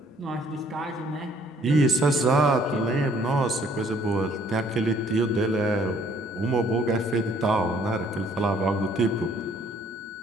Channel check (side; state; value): both; normal; correlation 0.62